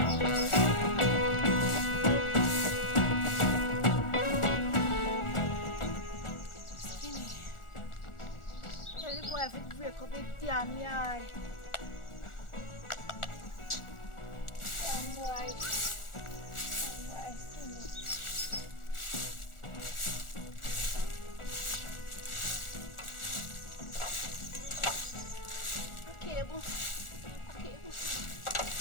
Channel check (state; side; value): late; right; 1.4 ms